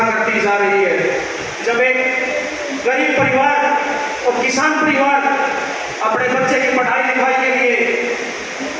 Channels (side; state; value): both; identical; correlation 1.00